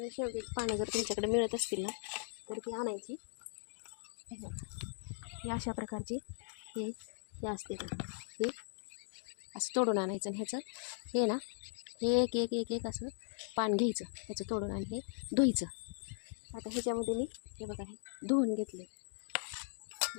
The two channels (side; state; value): right; silent; digital silence